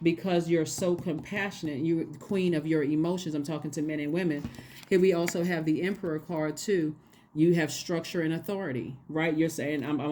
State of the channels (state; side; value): identical; both; correlation 1.00